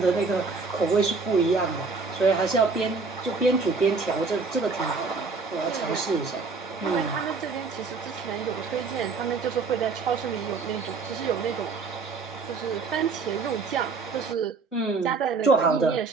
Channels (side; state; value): left; quieter; 4.4 dB